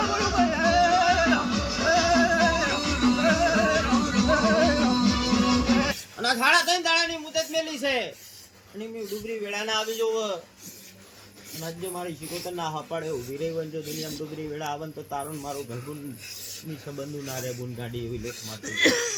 અને આ સાડા 3 દાડાની મુદત મેલી છે અને મેં ડુબરી વેળા ના આવી જવું અને આજે મારી શિકોતર ના હપાડે ઉભી રહી હોય ને જો દુનિયામાં ડુબરી વેળા આવે ને તો તારું ને મારું ઘરગુન ની સંબંધું ના રે બુન ગાડી એવી લેખ મારતી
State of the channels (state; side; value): identical; both; correlation 1.00